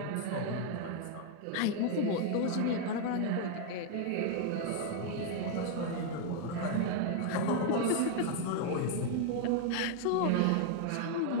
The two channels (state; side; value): different; both; correlation 0.00